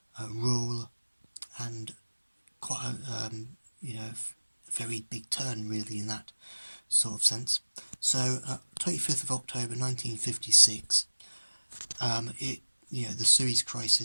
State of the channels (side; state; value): both; inverted; correlation -1.00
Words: rule, and quite a very big turn really in that sort of sense. So 25th of October 1956, the Suez